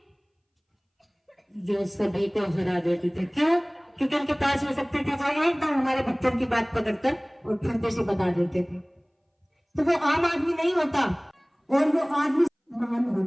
जो सभी को हरा देती थी। क्यों? क्योंकि उनके पास वो शक्ति थी जो एकदम हमारे भक्तों की बात पकड़कर और फंदे से बता देते थे। तो वो आम आदमी नहीं होता, और वो आदमी महान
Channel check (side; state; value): both; identical; correlation 1.00